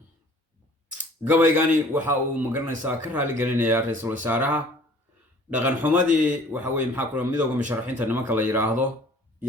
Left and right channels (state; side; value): normal; both; correlation 0.52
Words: Gabaygani waxa uu magaranaysaa ka raali gelinayaa ra'iisul wasaaraha dhaqan xumadii waxa weeye maxaa kula midowga musharaxiinta nimanka la yiraahdo